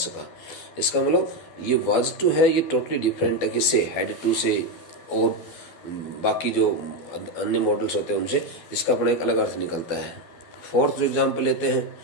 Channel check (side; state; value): right; late; 12 ms